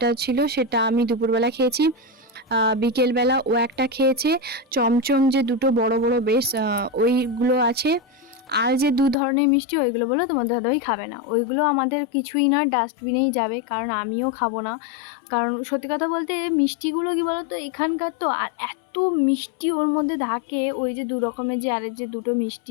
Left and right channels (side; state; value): right; drops out; at 9.2 s